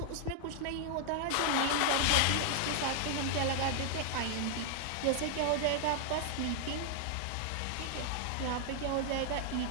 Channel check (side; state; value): both; different; correlation 0.00